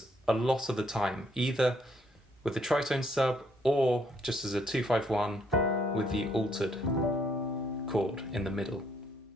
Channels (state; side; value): normal; both; correlation 0.69